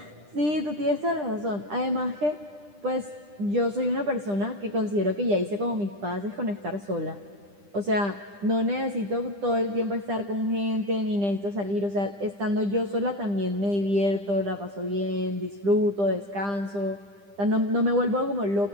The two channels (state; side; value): late; left; 10 ms